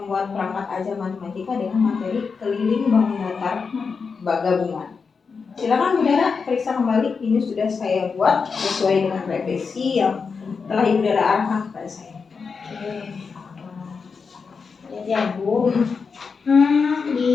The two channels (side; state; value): right; quieter; 5.3 dB